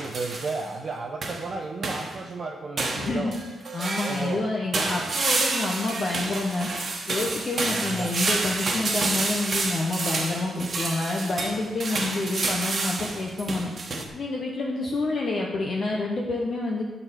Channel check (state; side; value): normal; both; correlation 0.82